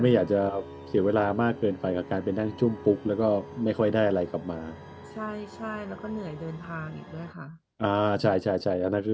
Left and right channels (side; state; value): both; identical; correlation 1.00